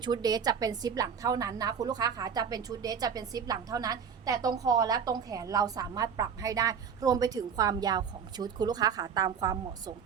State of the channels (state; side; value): quieter; left; 7.0 dB